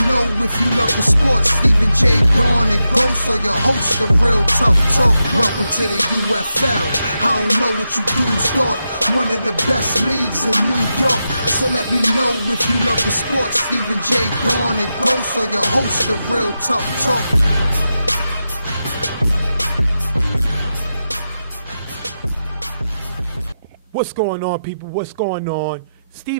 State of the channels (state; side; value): inverted; both; correlation -0.89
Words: know if you love the sports. Stephen J. Dawn and Ghost are your hosts of Real Tough Talk. Welcome to the UFL. I don't know what you dudes thought. One of the best leagues in New York. So let me know if you love the sports. Stephen J. Dawn and Ghost are your hosts of Real Tough Talk. What's going on, people? What's going on?